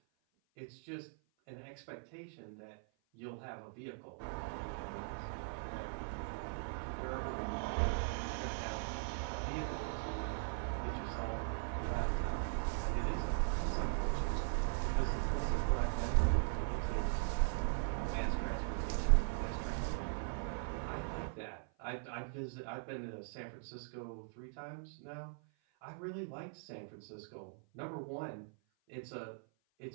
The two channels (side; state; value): left; silent; 51 dB below the other